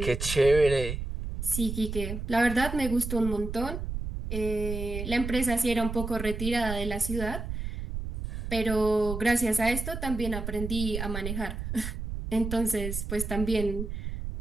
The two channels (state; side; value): noise; right; rumble, 5 dB below the sound